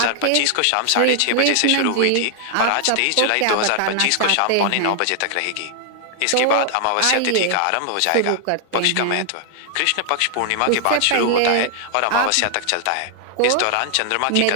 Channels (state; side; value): different; both; correlation 0.00